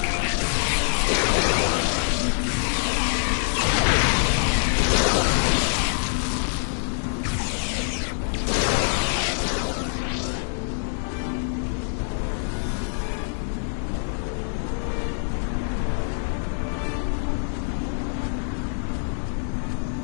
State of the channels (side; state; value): right; silent; digital silence